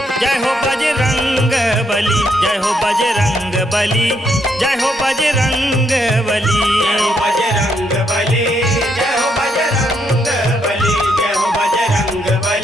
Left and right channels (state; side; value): normal; both; correlation 0.75